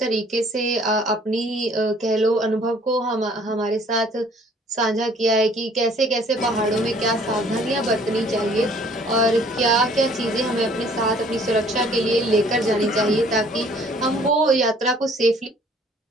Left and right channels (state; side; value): normal; both; correlation 0.57